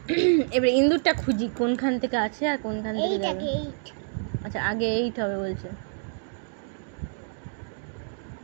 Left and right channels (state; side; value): silent; left; digital silence